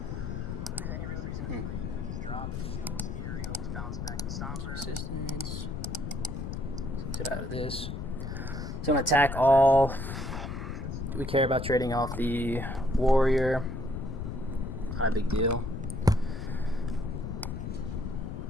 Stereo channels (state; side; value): noise; left; rumble, 5 dB below the sound